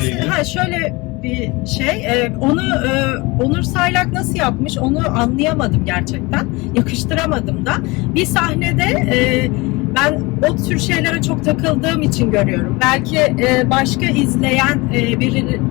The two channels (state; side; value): quieter; right; 24.3 dB